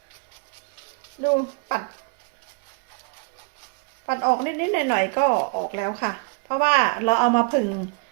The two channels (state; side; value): quieter; left; 33.7 dB